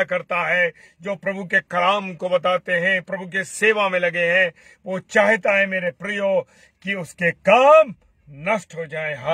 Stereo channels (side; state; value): both; identical; correlation 1.00